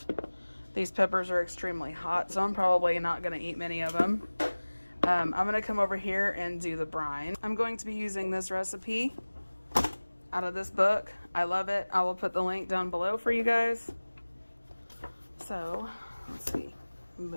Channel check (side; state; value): both; inverted; correlation -1.00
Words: These peppers are extremely hot, so I'm probably not gonna eat many of them. I'm gonna come over here and do the brine. I'm going to be using this recipe out of this book. I love it. I will put the link down below for you guys. So let's see,